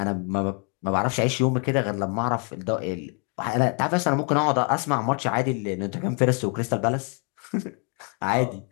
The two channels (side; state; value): right; quieter; 37.8 dB